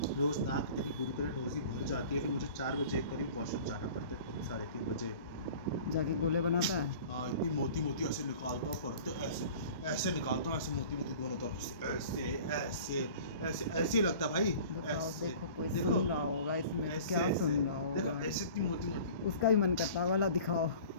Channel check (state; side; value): inverted; both; correlation -0.44